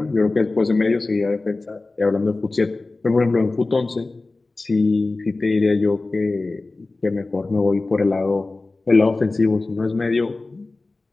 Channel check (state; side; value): quieter; right; 3.3 dB